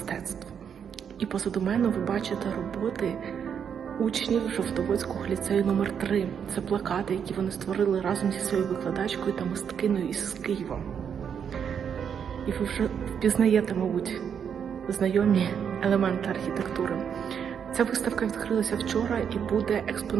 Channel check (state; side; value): quieter; left; 7.7 dB